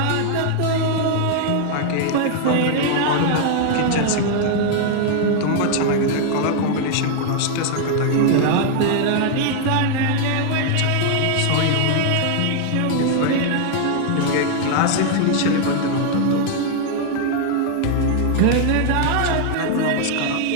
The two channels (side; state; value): both; different; correlation 0.00